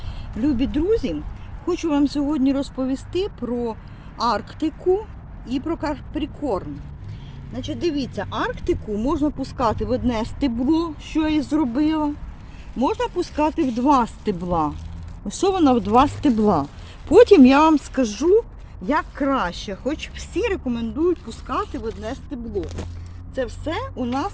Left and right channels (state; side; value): identical; both; correlation 1.00